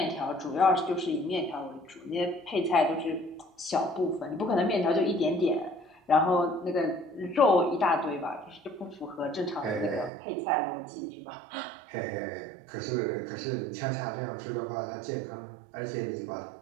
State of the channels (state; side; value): drops out; left; at 10.1 s